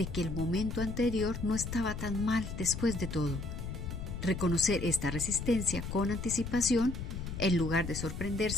que el momento anterior no estaba tan mal después de todo. Reconocer esta resistencia con anticipación, en lugar de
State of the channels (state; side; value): noise; left; rumble, 6 dB below the sound